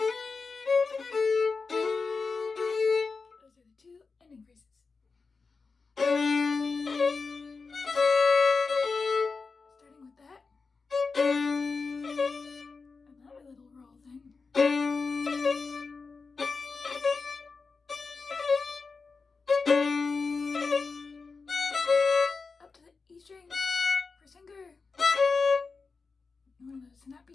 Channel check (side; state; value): right; quieter; 4.5 dB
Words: Those are the two ending phrases. Starting with that. Another little roll thing. Up to the E string for finger. One of those